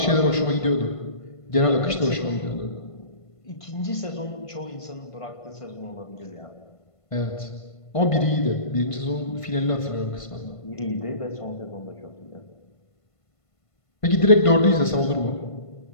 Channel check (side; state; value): right; late; 1.5 ms